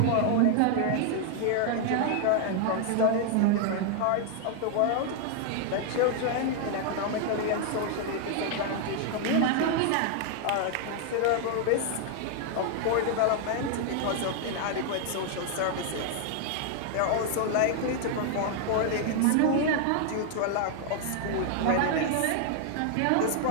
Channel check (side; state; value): both; different; correlation 0.00